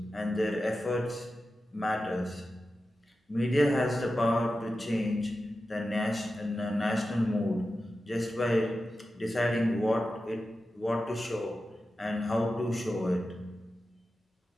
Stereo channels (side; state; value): both; normal; correlation 0.92